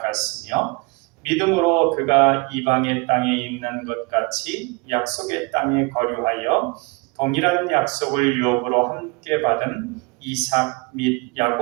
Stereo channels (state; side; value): quieter; left; 28.9 dB